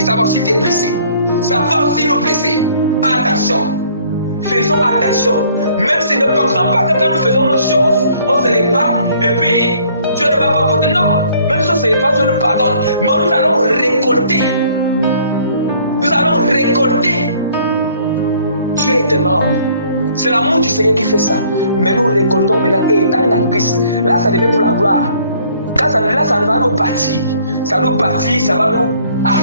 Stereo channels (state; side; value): inverted; both; correlation -0.59